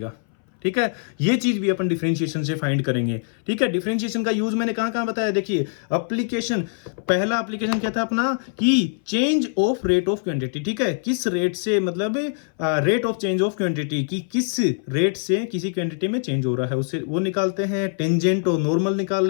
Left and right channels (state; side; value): silent; right; 61 dB below the other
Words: ठीक है। ये चीज भी अपन डिफरेंशिएशन से फाइंड करेंगे, ठीक है। डिफरेंशिएशन का यूज मैंने कहां कहां बताया, देखिए एप्लीकेशन, पहला एप्लीकेशन क्या था अपना कि change of rate of quantity, ठीक है। किस रेट से, मतलब rate of change of quantity की किस रेट से किसी क्वांटिटी में चेंज हो रहा है, उससे वो निकालते हैं। टेंजेंट और नॉर्मल निकाल